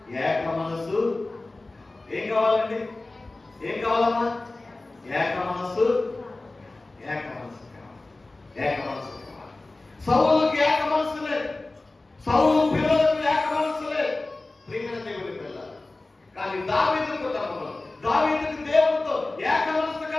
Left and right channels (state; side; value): quieter; right; 3.1 dB